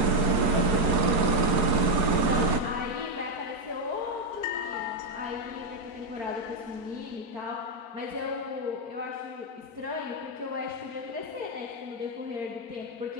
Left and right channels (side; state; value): left; late; 4.8 ms